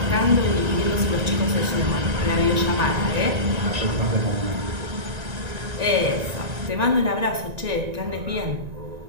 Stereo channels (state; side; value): late; left; 1.9 ms